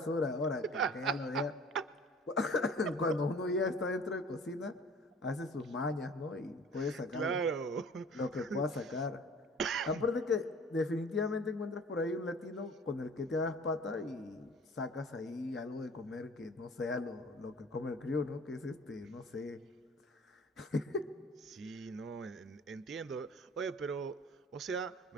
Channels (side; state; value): both; normal; correlation 0.47